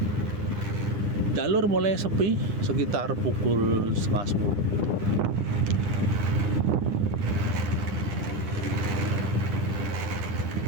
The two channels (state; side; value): late; left; 9.9 ms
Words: jalur mulai sepi sekitar pukul 9:30.